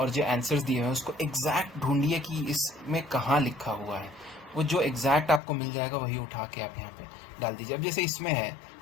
जो आंसर्स दिए हुए हैं उसको एग्जैक्ट ढूंढिए कि इसमें कहाँ लिखा हुआ है। वो जो एग्जैक्ट आपको मिल जाएगा वही उठा के आप यहाँ पे डाल दीजिए। अब जैसे इसमें है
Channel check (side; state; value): right; drops out; at 5.4 s